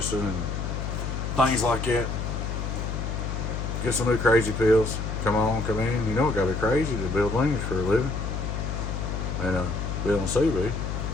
and things like that. Get some new crazy pills. Come on, come in. You know it gotta be crazy to build wings for a living. And be on CB.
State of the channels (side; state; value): left; noise; hum, 3 dB below the sound